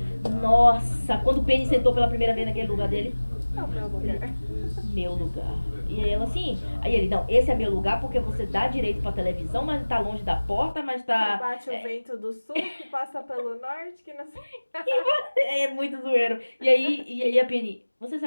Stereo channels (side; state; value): both; inverted; correlation -1.00